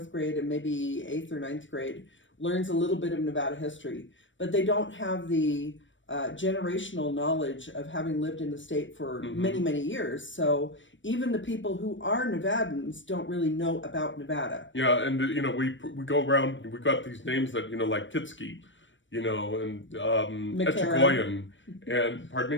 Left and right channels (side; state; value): right; late; 0.55 ms